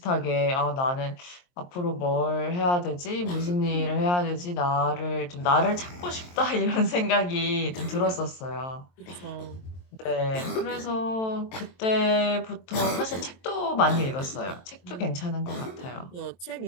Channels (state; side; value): late; right; 23 ms